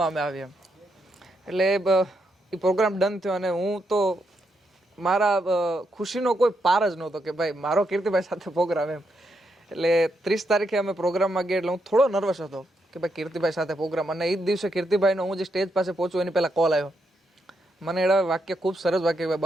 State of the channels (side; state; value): both; normal; correlation 0.80